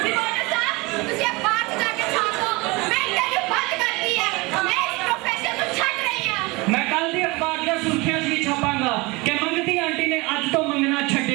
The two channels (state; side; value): quieter; left; 24.5 dB